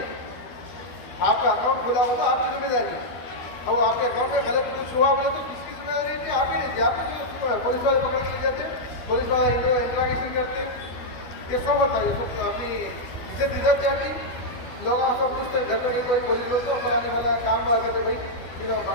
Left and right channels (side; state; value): right; late; 12 ms